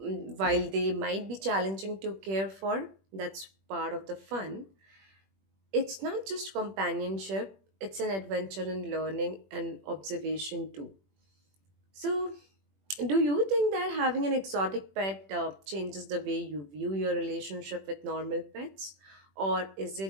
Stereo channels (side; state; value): left; late; 21 ms